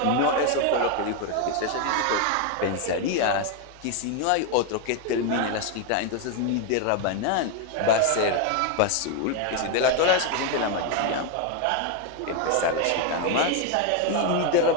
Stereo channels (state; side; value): different; both; correlation 0.01